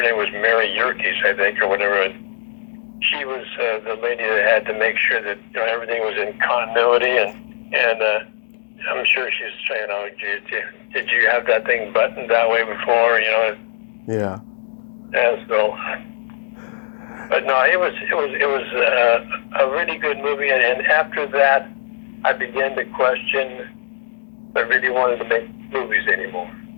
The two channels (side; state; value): right; silent; digital silence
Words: name was Mary Yerkes, I think, or whatever. She was the lady that had to make sure that everything was in continuity, and I'm sure she's saying, "Oh, did you have that thing buttoned that way before?" Yeah. Yeah. So, but no, it was a really good movie, and after that, I began to question if I really wanted to make movies anymore.